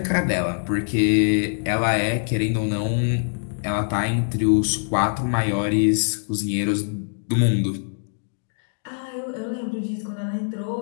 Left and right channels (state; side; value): silent; right; digital silence